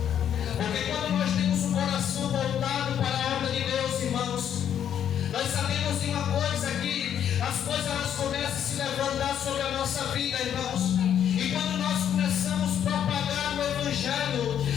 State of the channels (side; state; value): right; quieter; 9.4 dB